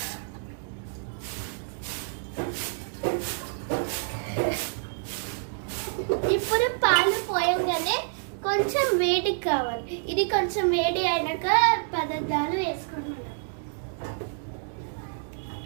ఇప్పుడు పాలు పోయంగానే కొంచెం వేడి కావాలి. ఇది కొంచెం వేడి అయినాక పదార్థాలు వేసుకుంటున్నాం.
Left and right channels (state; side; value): silent; left; digital silence